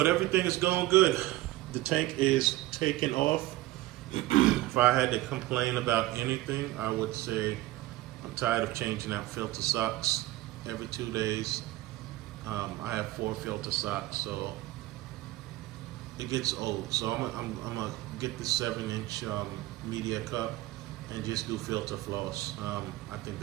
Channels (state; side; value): quieter; left; 17.4 dB